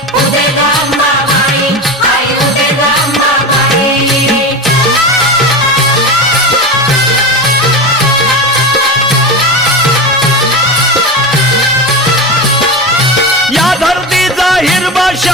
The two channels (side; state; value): both; normal; correlation 0.23